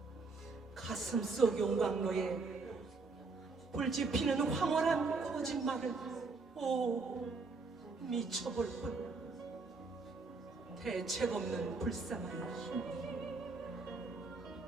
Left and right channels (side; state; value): left; quieter; 4.0 dB